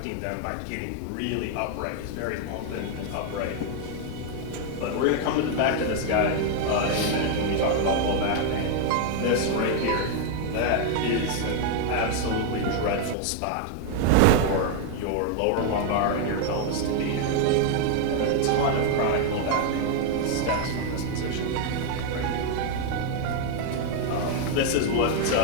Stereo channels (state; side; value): different; both; correlation 0.00